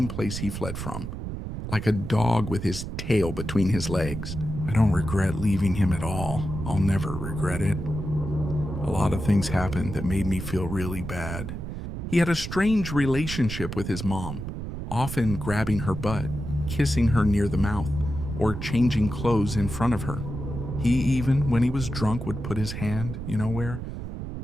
place he fled from. Like a dog with his tail between his legs. I don't regret leaving him at all. I'll never regret it. A lot of things happened that made me feel really bad. He had a strange relationship with his mom, often grabbing her butt, kissing her near the mouth, or changing clothes in front of her. He even, when he was drunk, would put his hand, you know where?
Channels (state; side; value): noise; right; rumble, 6 dB below the sound